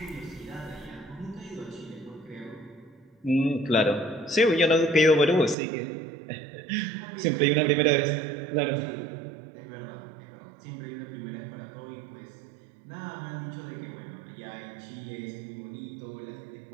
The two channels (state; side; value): drops out; left; at 5.6 s